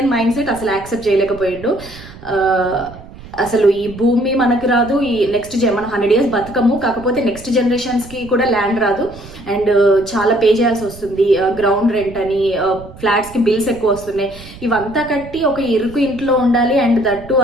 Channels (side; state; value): right; noise; rumble, 18 dB below the sound